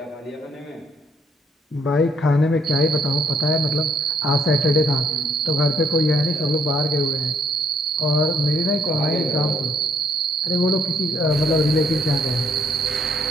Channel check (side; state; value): both; normal; correlation 0.69